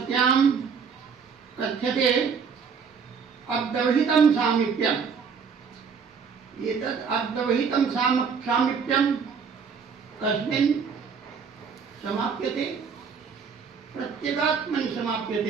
कथ्यते अव्यवहितं सामीप्यम्। एतत् अव्यवहितं सामीप्यं कस्मिन् समाप्यते? प्रत्यगात्मनि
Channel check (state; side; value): quieter; left; 6.1 dB